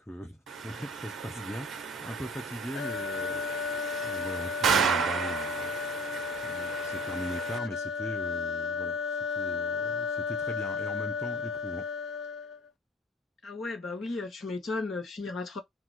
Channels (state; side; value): normal; both; correlation 0.44